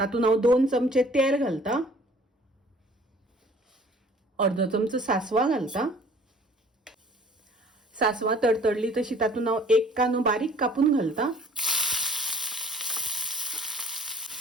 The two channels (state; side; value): normal; both; correlation 0.52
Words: हांव 2 चमचे तेल घालता। अर्धो चमचो सासवा घालता। सासवा तडतडली तशी तातूंत हांव 1 कांदो बारीक कापून घालता।